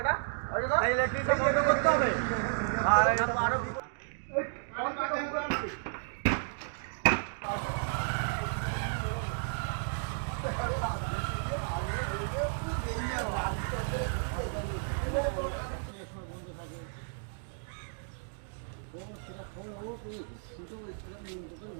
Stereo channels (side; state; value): left; silent; digital silence